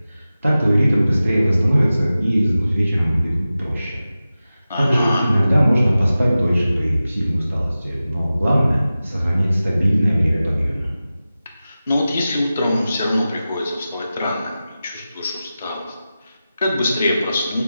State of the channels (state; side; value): inverted; both; correlation -0.94